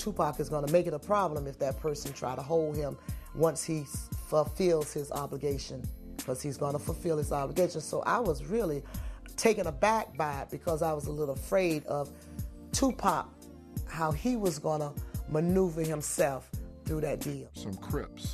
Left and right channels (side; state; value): both; identical; correlation 1.00